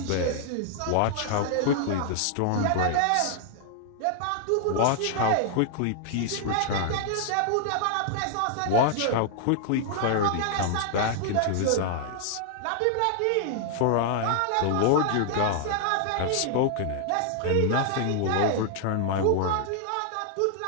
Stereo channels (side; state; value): both; different; correlation -0.01